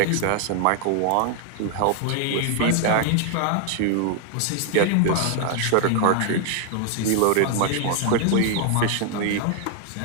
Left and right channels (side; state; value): both; different; correlation 0.00